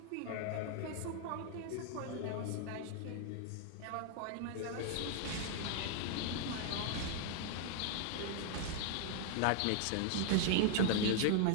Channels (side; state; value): both; different; correlation 0.00